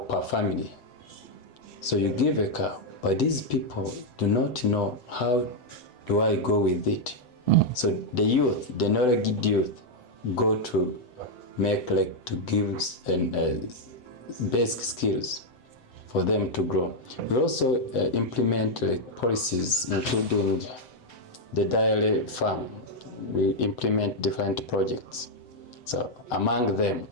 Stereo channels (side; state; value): right; late; 7.9 ms